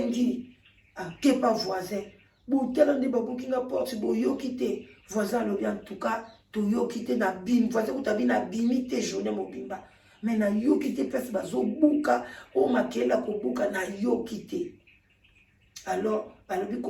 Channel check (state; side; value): identical; both; correlation 1.00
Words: akepa voisin botala nde babuki nga porte boyoki te voisin alobi en tout cas toyoki te na bimi voisin kutabi na bimi te journée mobimba mais na yoki te place bazobuka o makela kobuka na yoki te alors balobi